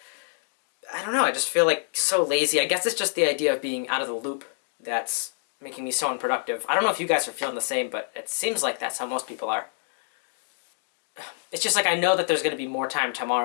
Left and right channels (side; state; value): right; silent; digital silence